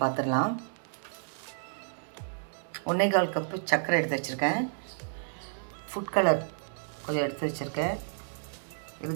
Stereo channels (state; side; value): silent; left; digital silence